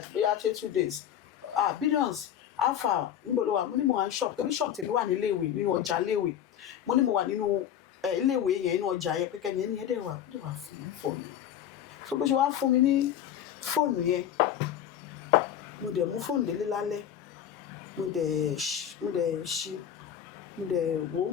bóyá 2 days Billions alpha níbo ló wà mo ní mo wà ní shop torí shop tèmi wà ní iléèwé nínú ọjà iléèwé mo ní mo wà nínú iléèwé yẹn nínú ọjà yẹn pé kẹ́ni ẹni yẹn dẹ̀ wà fún mi fóònù yẹn so bó ṣe wá fún mi ní fóònù yẹn mo dẹ̀ mú fóònù délé lálẹ́ mo dẹ̀ ṣí mo dẹ̀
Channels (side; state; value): right; quieter; 10.0 dB